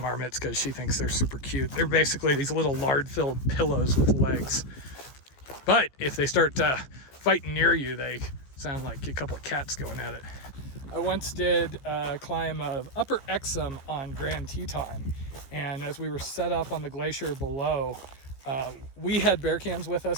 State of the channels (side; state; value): right; late; 15 ms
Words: because she thinks they're super cute. They're basically these little lard-filled pillows with legs. But if they start fighting near you, they sound like a couple of cats going at it. I once did a climb of Upper Exum on Grand Teton, and as we were set up on the glacier below, we had bear cans with